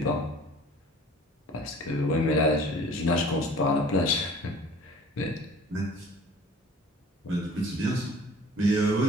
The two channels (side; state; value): both; normal; correlation 0.48